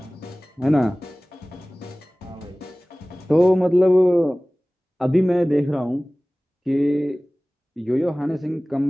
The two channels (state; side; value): normal; both; correlation 0.98